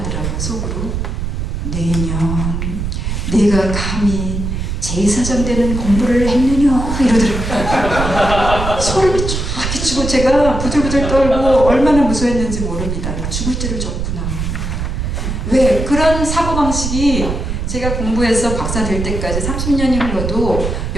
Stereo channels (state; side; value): noise; right; rumble, 3 dB below the sound